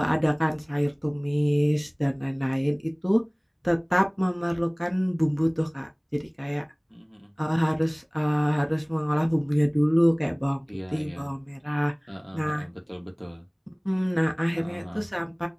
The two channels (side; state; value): both; identical; correlation 1.00